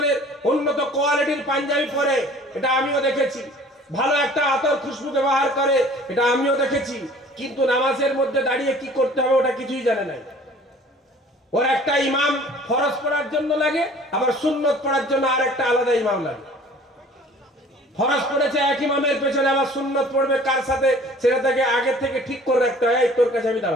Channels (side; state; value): both; normal; correlation 0.49